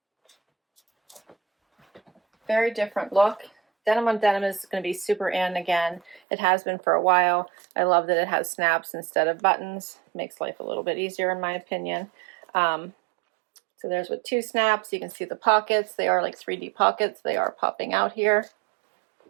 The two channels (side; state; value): left; drops out; at 6.2 s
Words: Very different look. Denim on denim is going to be super in again. It has been for a while. I love that it has snaps instead of buttons. Makes life a little bit easier in my opinion. So there's with 2 snaps. You can see the pockets. They are like 3D pockets. They are popping out here